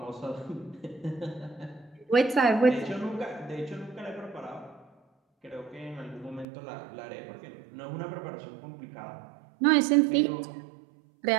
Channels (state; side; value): drops out; left; at 6.5 s